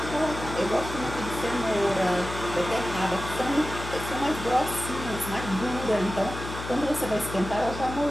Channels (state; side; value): noise; left; hum, 9 dB below the sound